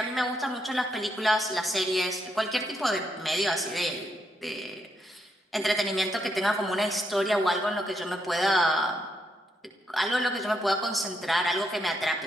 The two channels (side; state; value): both; normal; correlation 0.78